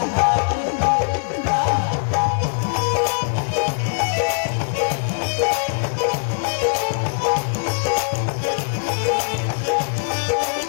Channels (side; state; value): right; silent; digital silence